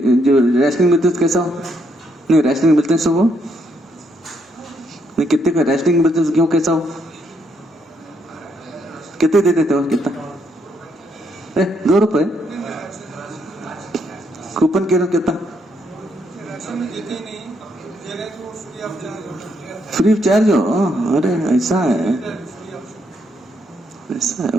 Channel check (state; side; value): normal; both; correlation 0.75